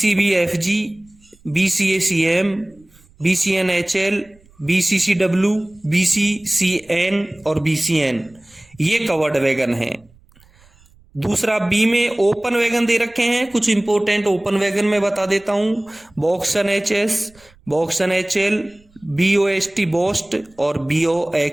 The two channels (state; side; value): noise; right; rumble, 30 dB below the sound